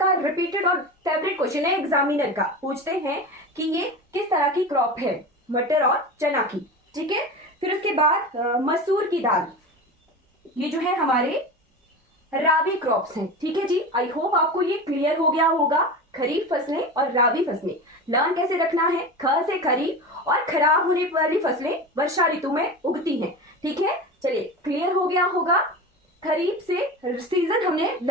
रिपीटेड और फेवरेट क्वेश्चन है एग्जामिनर का। पूछते हैं कि ये किस तरह की क्रॉप है, मटर और चना की। ठीक है, फिर उसके बाद मसूर की दाल, ये जो है हमारे राबी क्रॉप्स हैं। ठीक है जी, आई होप आपको ये क्लियर हो गया होगा। खरीफ फसलें और राबी फसलें लर्न कैसे रखना है। ख से खरीफ, और खराब होने वाली फसलें वर्षा ऋतु में उगती हैं। ठीक है, चलिए क्लियर हो गया होगा। खरीफ से सीजन हमने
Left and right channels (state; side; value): normal; both; correlation 0.28